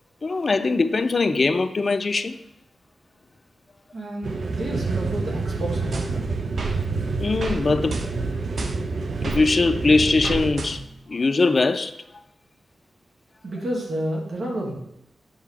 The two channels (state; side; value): normal; both; correlation 0.91